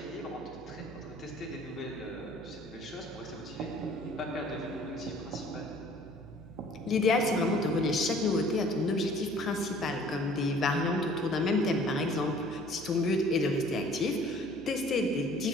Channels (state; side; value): noise; right; hum, 20 dB below the sound